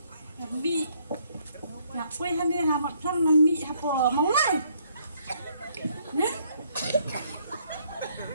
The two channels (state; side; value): inverted; both; correlation -0.68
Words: Quay hắn đi hà mặt thân nằm mị hà bò máu này. Nè.